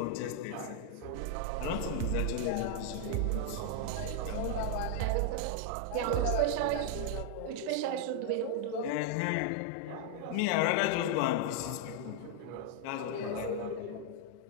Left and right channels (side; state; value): both; different; correlation 0.00